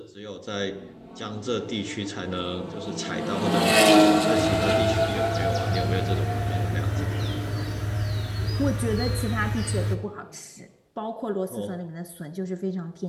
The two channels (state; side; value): identical; both; correlation 1.00